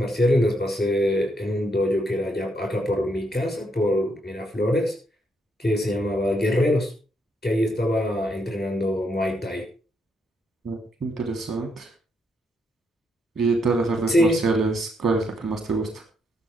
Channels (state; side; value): normal; both; correlation 0.76